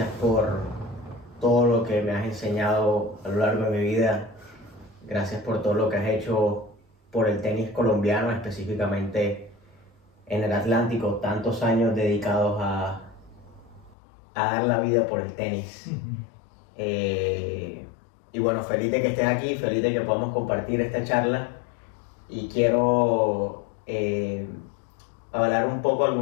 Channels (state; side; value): drops out; right; at 14.0 s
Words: por todo lo que me has enseñado a lo largo de mi vida. Gracias por todo lo que has hecho por el tenis colombiano, específicamente en el Atlántico. Tantos años dedicados a dar la vida por el tenis. Y bueno, feliz de que estés aquí, feliz de que podamos compartir esta charla. Y quiero hablar un poco.